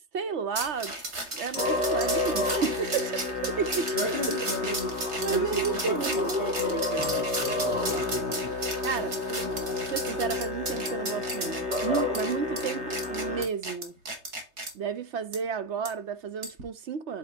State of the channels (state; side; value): late; left; 3.3 ms